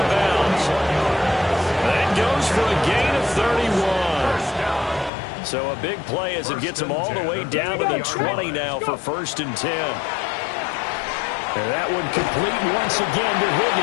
bounds. That goes for a gain of 31. So a big play as it gets him all the way down to the 20 now for first and 10. And that one complete once again to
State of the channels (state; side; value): drops out; right; at 5.1 s